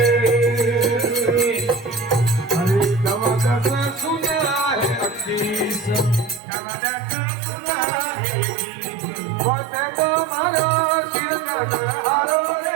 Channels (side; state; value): left; drops out; at 6.4 s